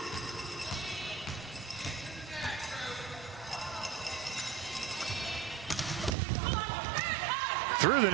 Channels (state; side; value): drops out; left; at 6.2 s